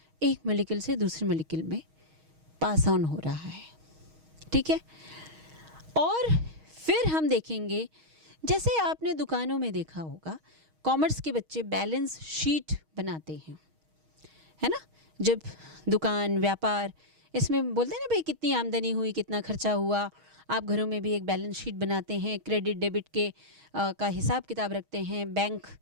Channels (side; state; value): left; late; 6.4 ms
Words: एक मॉलिक्यूल से दूसरे मॉलिक्यूल में पास ऑन हो रहा है। ठीक है, और फिर हम देखेंगे, जैसे आपने दुकानों में देखा होगा, कॉमर्स के बच्चे बैलेंस शीट बनाते हैं, है ना? जब दुकान व्यापार इसमें बोलते हैं ना भाई कितनी आमदनी हुई, कितना खर्चा हुआ। आप घरों में भी एक बैलेंस शीट बनाते हैं, क्रेडिट डेबिट के का हिसाब किताब रखते हैं, बैंक